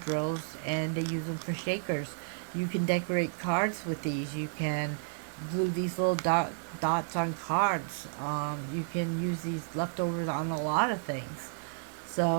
drills, and they use them for shakers. You can decorate cards with these. You can glue these little dots on cards. You can use these leftovers on a lot of things.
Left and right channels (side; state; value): left; silent; 57 dB below the other